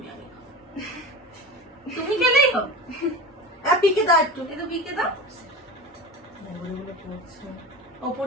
আগে খাও। তুমি খেলেই হোক, পিকে দাও একটু। এই তো পিকে দাও, ওপর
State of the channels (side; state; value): both; normal; correlation 0.30